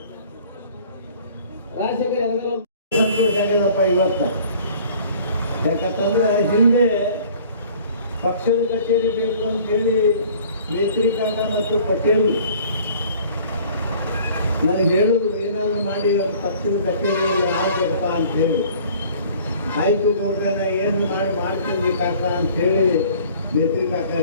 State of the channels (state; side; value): inverted; both; correlation -0.51